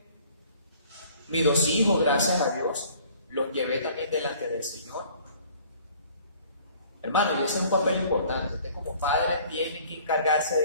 Mis 2 hijos, gracias a Dios, los llevé también delante del Señor. Hermano, y ese es un papel importante. Usted como padre tiene que encargarse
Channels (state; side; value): inverted; both; correlation -0.54